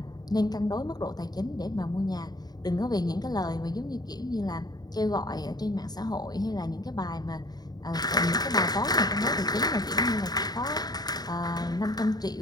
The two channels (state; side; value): late; right; 0.19 ms